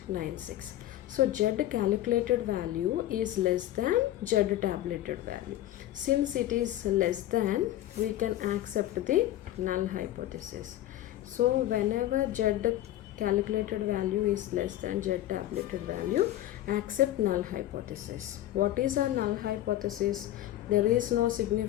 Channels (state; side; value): quieter; right; 13.8 dB